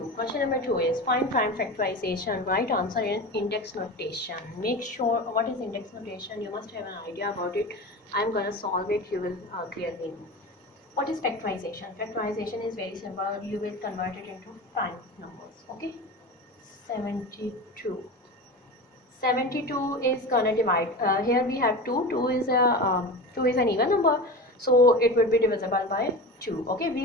Question number 2 is find prime factorization. Right answer in index notation. Make sure, what is index notation? You must have an idea about it. I am going to solve it. You will clearly know. What is factorization? Factorization is very simple. You will convert it into prime numbers. Okay. 72. 72 is gonna divide. Here we have 2. 2 is an even number, so it would be divisible by 2. Okay,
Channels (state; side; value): normal; both; correlation 0.28